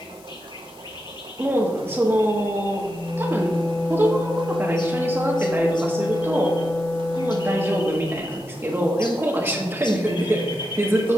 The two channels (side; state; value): left; noise; hiss, 25 dB below the sound